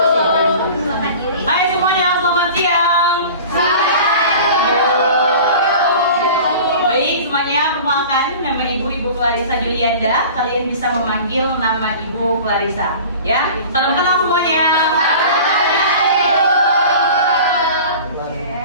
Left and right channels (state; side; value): inverted; both; correlation -0.40